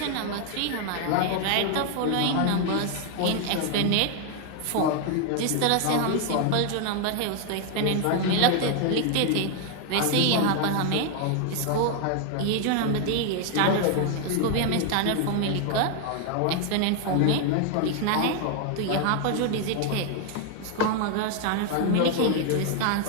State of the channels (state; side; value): different; both; correlation 0.00